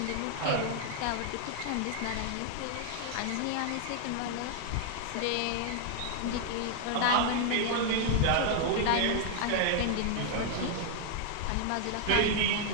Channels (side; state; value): both; different; correlation 0.00